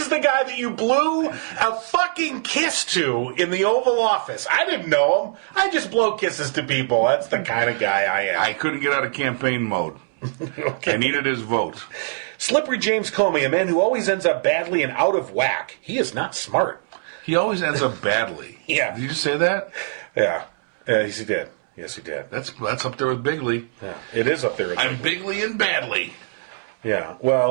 the guy that you blew a fucking kiss to in the Oval Office. I didn't know him. I just blow kisses to people. That's the kind of guy I am. I couldn't get out of campaign mode. Okay. I needed his vote. Slippery James Comey, a man who always ends up badly and out of whack. He is not smart. He always ends up badly. Yeah. Did you just say that? Yeah. Yes, he did. Yes, he did. That's up there with Bigley. Yeah. It is up there. I'm Bigley and badly. Yeah.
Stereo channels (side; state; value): left; silent; 64 dB below the other